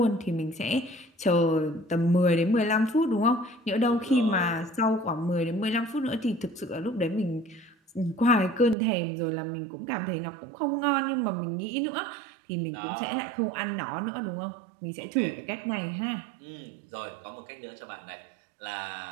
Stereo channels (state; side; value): drops out; left; at 8.8 s